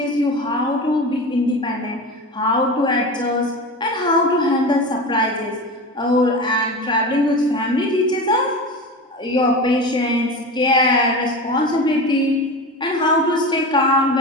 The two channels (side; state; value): both; normal; correlation 0.28